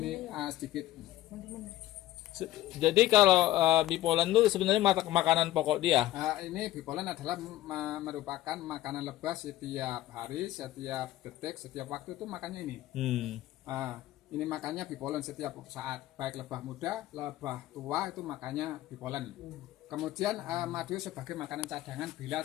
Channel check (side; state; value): right; quieter; 15.2 dB